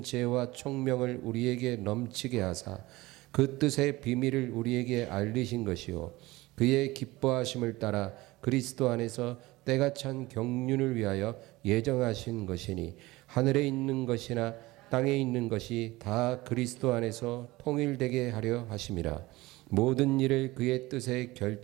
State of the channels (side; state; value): left; quieter; 19.8 dB